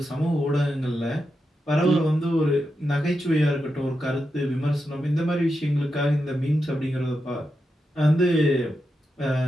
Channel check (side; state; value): both; normal; correlation 0.87